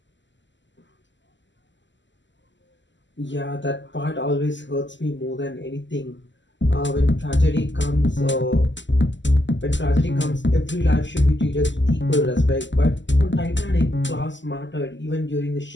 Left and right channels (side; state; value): right; late; 0.54 ms